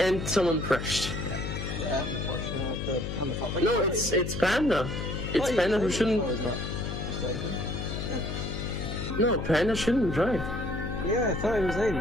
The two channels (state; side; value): noise; left; hum, 5 dB below the sound